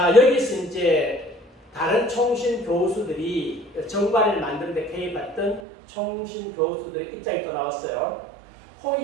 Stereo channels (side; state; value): left; drops out; at 5.6 s